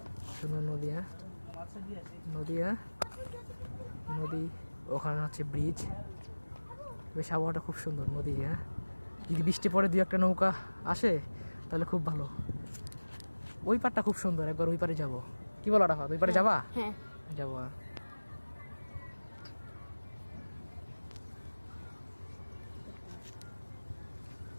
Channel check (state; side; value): inverted; both; correlation -1.00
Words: সুন্দর নদী, হ্যাঁ নদী, হ্যাঁ নদী। ওখানে হচ্ছে ব্রিজ। বেশ আবহাওয়াটা খুব সুন্দর, নদী, হ্যাঁ। যদি বৃষ্টি পরে দুই একটা নৌকা আসে তাহলে খুব ভালো। ওই পারটা খুব সুন্দর, একবার ওই পারে যাবো। কি বলো রাফাত, ওই পারে যাবা? হ্যাঁ যাবো।